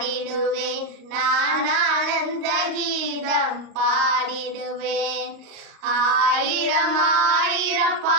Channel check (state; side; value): late; left; 38 ms